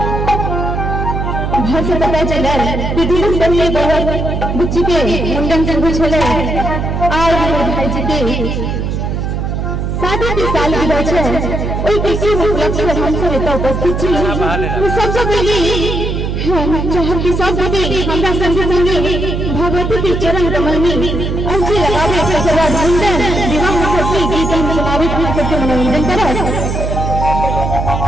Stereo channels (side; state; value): right; noise; hum, 2 dB below the sound